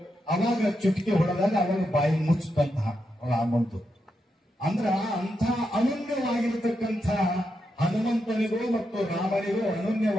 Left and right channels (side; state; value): both; normal; correlation 0.84